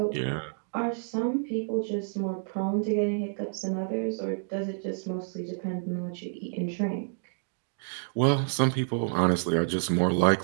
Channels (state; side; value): silent; left; digital silence